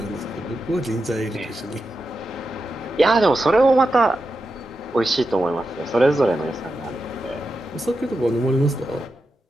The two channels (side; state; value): both; normal; correlation 0.89